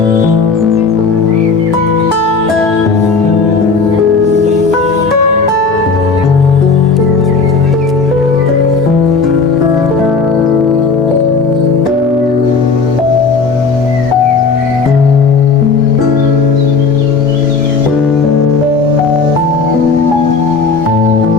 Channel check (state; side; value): quieter; right; 4.6 dB